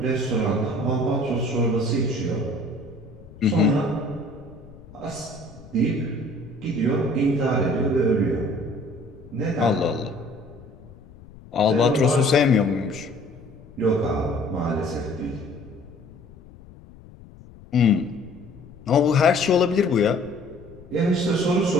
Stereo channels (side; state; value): left; noise; rumble, 21 dB below the sound